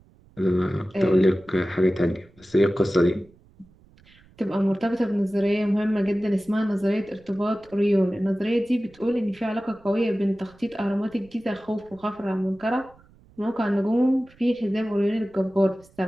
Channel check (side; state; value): right; noise; rumble, 28 dB below the sound